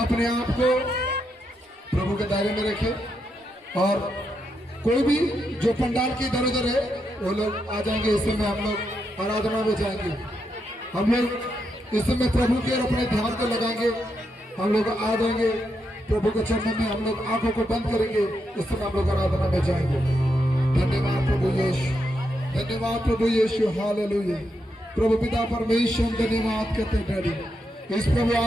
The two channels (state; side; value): normal; both; correlation 0.82